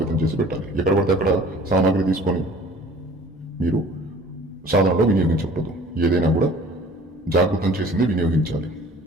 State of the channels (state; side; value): normal; both; correlation 0.49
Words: చేసి పెట్టాలి. ఎక్కడ పడితే అక్కడ సామాగ్రి తీసుకొని మీరు సాధనలో వినియోగించకూడదు. ఏదైనా కూడా జాగృతం చేసింది వినియోగించాలి.